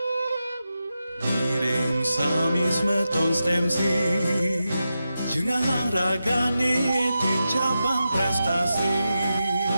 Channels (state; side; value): inverted; both; correlation -0.90